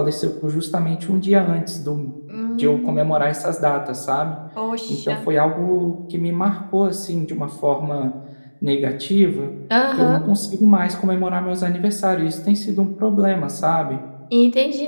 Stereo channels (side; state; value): both; inverted; correlation -1.00